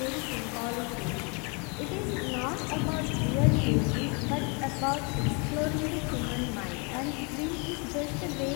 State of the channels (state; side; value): quieter; right; 33.2 dB